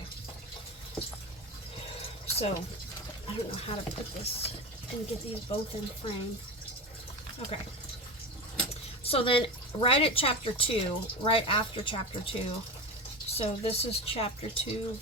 So, I don't know how to put this and get these both in frame. Okay. So then, right at chapter 2, right after chapter 2, so this is chapter 2,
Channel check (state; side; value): normal; both; correlation 0.24